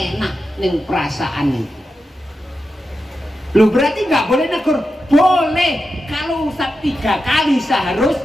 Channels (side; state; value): both; normal; correlation 0.89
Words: nih perasaan itu. Loh berarti nggak boleh negur? Boleh. Kalau Ustadz 3 kali